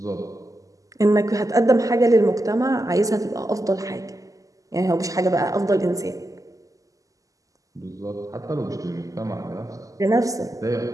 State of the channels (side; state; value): left; late; 0.17 ms